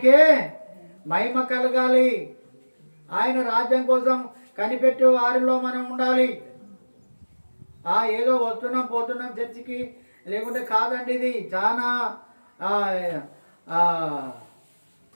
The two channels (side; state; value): both; inverted; correlation -1.00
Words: మహిమ కలగాలి. ఆయన రాజ్యం కోసం కనిపెట్టే వారిలో మనం ఉండాలి. ఏదో వస్తున్నాం పోతున్నాం చర్చికి, లేకుంటే కాదండి. ఇది చాలా